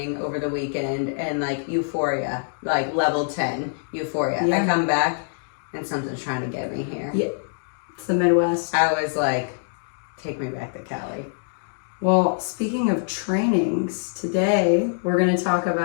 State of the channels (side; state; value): right; silent; digital silence